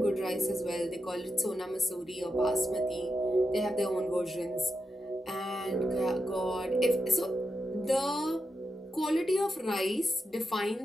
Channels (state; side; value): normal; both; correlation 0.87